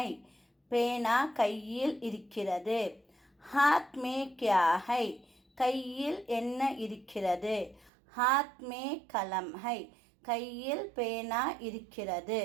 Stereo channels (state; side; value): drops out; left; at 7.9 s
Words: பேனா கையில் இருக்கிறது. ஹாத் மே கியா ஹை கையில் என்ன இருக்கிறது. ஹாத் மே கலம் ஹை கையில் பேனா இருக்கிறது.